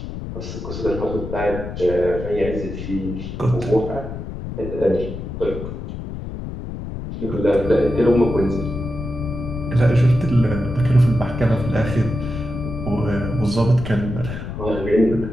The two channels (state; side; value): noise; left; rumble, 8 dB below the sound